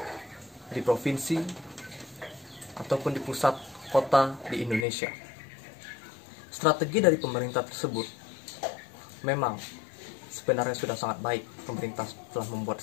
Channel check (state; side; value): drops out; right; at 4.9 s